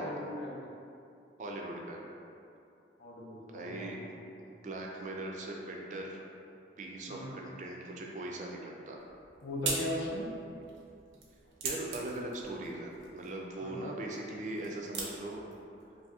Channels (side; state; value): both; normal; correlation 0.33